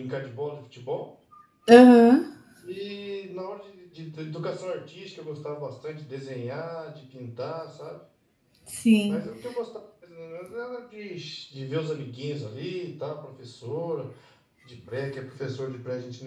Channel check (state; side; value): identical; both; correlation 1.00